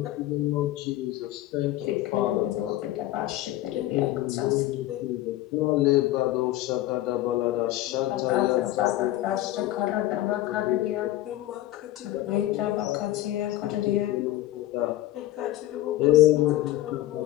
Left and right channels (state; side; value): quieter; right; 15.1 dB